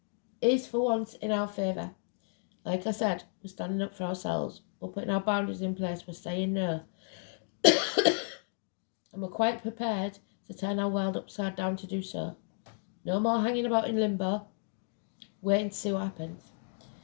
is for once in our favour. Like I said, we're standing up for ourselves. We're putting our boundaries in place. We're saying no. And we're quite prepared to turn our world upside down to do so. No more hanging about in limbo, waiting to see what happens.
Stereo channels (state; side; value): silent; right; 56 dB below the other